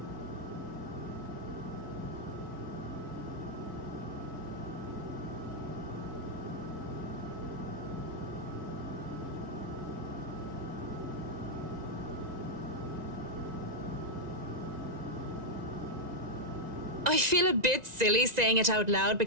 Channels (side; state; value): left; late; 1.9 ms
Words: I feel a bit silly saying it out loud